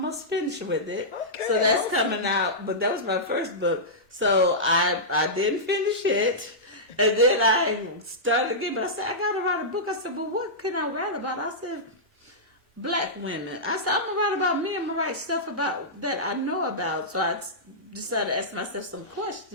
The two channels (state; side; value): normal; both; correlation -0.13